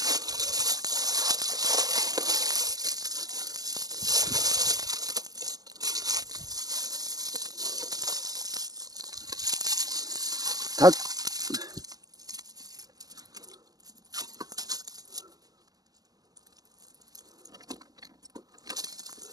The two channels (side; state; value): left; late; 0.18 ms